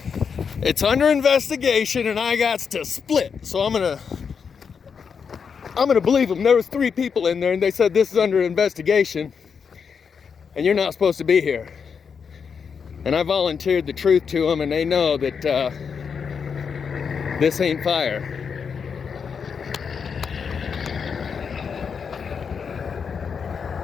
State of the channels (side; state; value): right; quieter; 6.3 dB